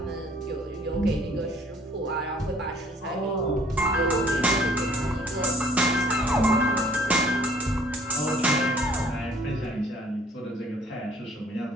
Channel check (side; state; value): both; normal; correlation 0.57